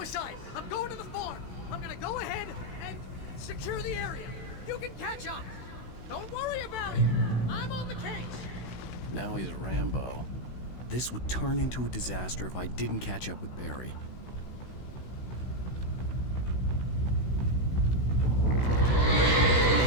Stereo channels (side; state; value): right; late; 16 ms